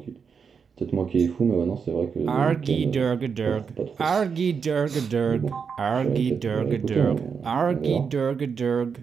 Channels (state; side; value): quieter; left; 6.1 dB